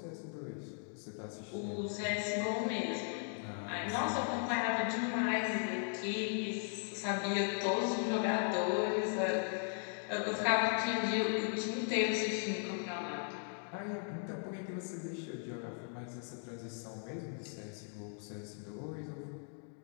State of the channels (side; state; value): right; silent; 53 dB below the other